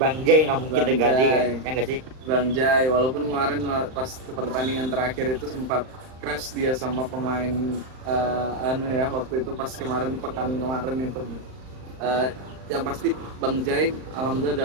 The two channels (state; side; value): late; left; 39 ms